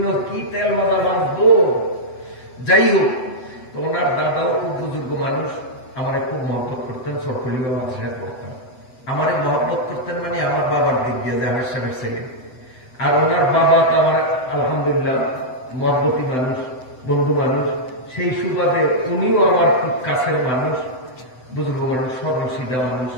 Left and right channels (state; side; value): late; right; 7.9 ms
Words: কি তেল মাথা বাঁচবো। যাই হোক, তো ওনার দাদাও খুব বুজুর্গ মানুষ, আমারে খুব মহব্বত করতেন, সরকলিবা মাদ্রাসায় পড়তাম। আমারে মহব্বত করতেন মানে আমার বাবার দিক দিয়ে যে আমার সাহেবের ছেলে। আর ওনার বাবা তো আমার আলহামদুলিল্লাহ মহব্বতী মানুষ, বন্ধু মানুষ। সেই সুবাদে উনিও আমার খুব কাছের মানুষ, বুজুর্গ মানুষ, সর্বসিধা মানুষ।